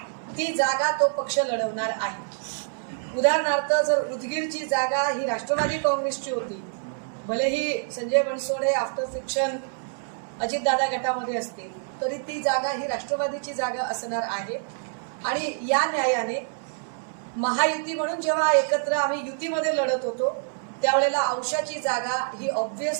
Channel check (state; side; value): silent; left; 61 dB below the other